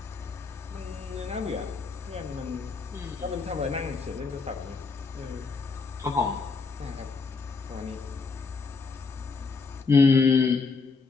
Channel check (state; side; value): quieter; right; 4.4 dB